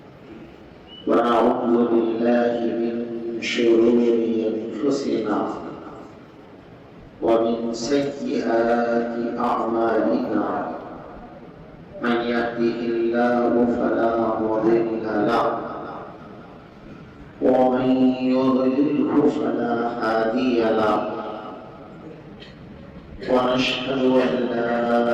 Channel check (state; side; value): identical; both; correlation 1.00